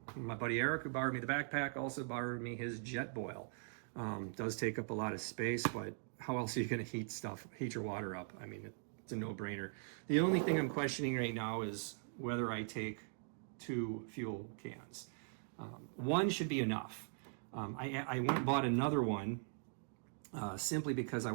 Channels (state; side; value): silent; left; digital silence